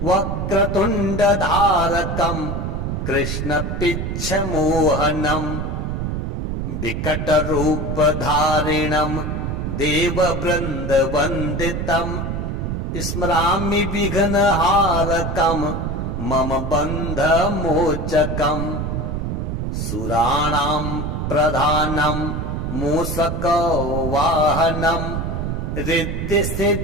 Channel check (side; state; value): right; noise; rumble, 2 dB below the sound